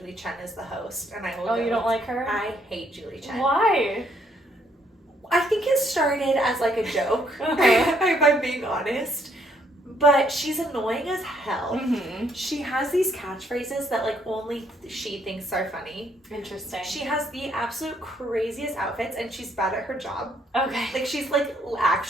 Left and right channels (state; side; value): normal; both; correlation 0.69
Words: Chen is the host, and I will. Oh, you don't like her? I hate Julie Chen. Why? I think it started as like a joke, if I'm being honest. But she's annoying as hell. Mm-hmm. She has these catchphrases that like only she thinks are funny. Interesting. She has the absolute craziest outfits, and she's bad at her job. Okay. Like she's like